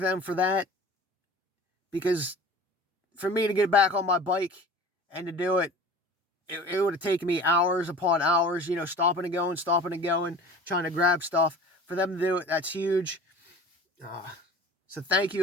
them for that, because for me to get back on my bike and to do it, it would have taken me hours upon hours, stopping and going, trying to grab stuff. For them to do it, that's huge. So thank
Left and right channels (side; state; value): both; normal; correlation 0.41